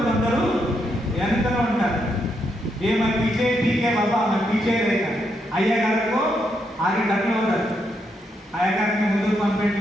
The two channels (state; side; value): normal; both; correlation 0.79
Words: కొందరు వెనకలో ఉంటారు. ये मैं पीछे ठीक है बाबा, मैं पीछे रहेगा. अय्या गार को आगे ढकलो उधर, अय्या गार ने ముందుకు పంపండి,